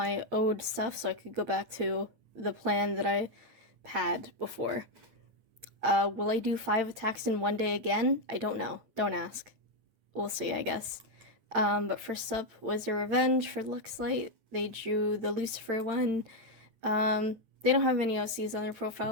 ode stuff so I could go back to the plan that I had before. Will I do 5 attacks in one day again? I don't know. Don't ask. We'll see, I guess. But first up was a revenge for Luxlight. They drew the Lucifer one. They don't have any OCs on their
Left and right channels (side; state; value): left; late; 8.9 ms